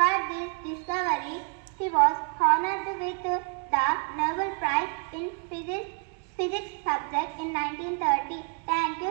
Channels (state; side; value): quieter; left; 39.4 dB